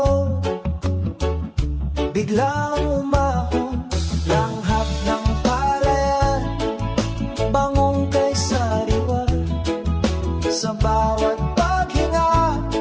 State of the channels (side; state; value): both; identical; correlation 1.00